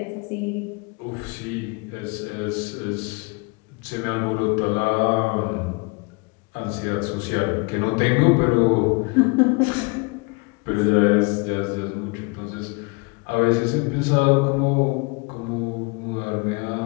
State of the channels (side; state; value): right; quieter; 29.8 dB